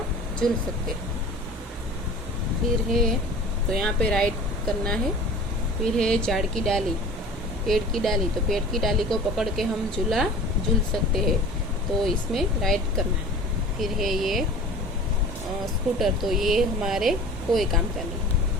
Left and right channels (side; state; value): both; normal; correlation 0.41